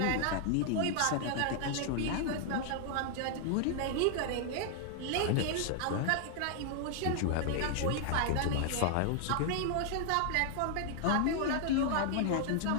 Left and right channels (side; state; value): both; different; correlation 0.00